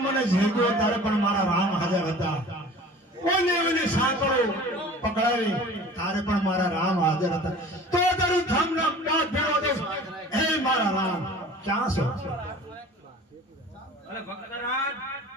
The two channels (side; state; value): both; normal; correlation 0.43